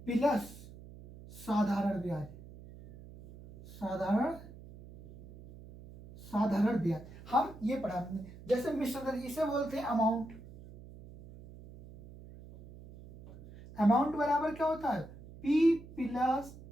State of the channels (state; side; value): noise; right; hum, 17 dB below the sound